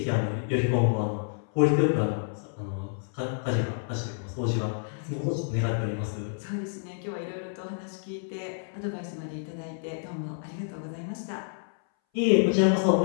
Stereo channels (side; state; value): right; silent; 59 dB below the other